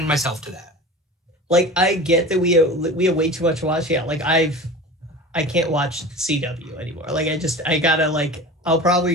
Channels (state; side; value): normal; both; correlation 0.34